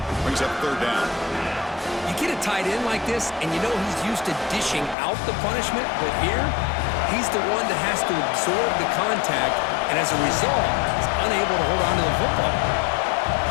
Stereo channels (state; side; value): drops out; right; at 5.0 s